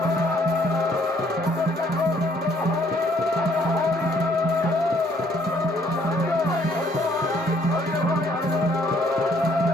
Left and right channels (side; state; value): both; normal; correlation 0.65